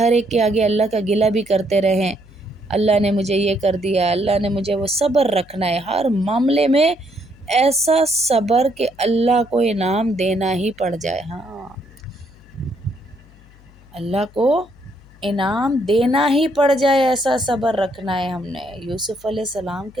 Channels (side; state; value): left; noise; hum, 25 dB below the sound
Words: ایک کے آگے اللہ کا گلہ بھی کرتے رہیں، اللہ نے مجھے یہ کر دیا، اللہ نے مجھے وہ، صبر رکھنا ہے ہر معاملے میں، ایسا صبر کہ اللہ کو انعام دینا ہی پڑ جائے، ہاں اللہ کو انعام دینا ہی پڑ جائے، ایسا صبر رکھنا ہے ہم نے۔ یوسف علیہ السلام کے